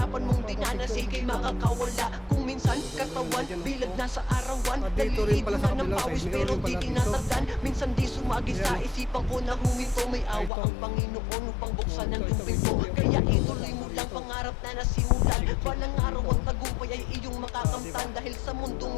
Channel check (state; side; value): drops out; right; at 10.5 s